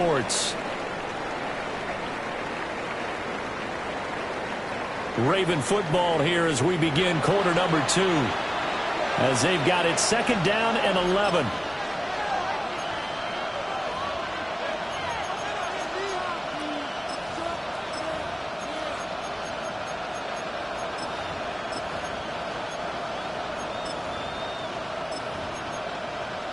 Raven football here as we begin quarter number 2. As they've got it 2nd down and 11.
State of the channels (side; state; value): both; identical; correlation 1.00